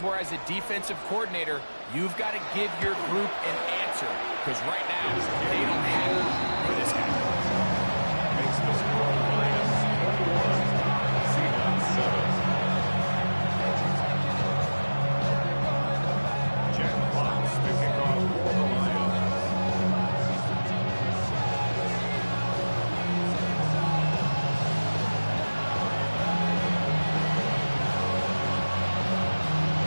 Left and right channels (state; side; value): inverted; both; correlation -1.00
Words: where as a defensive coordinator, you've got to give your group an answer. Because right now, they don't have it for this guy. Makes the score Lions 41, Seahawks 7. Jack Fox, the kickoff for the Lions.